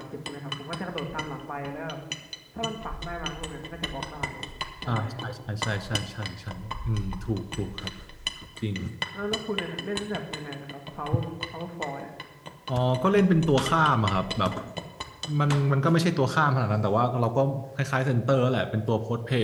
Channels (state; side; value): identical; both; correlation 1.00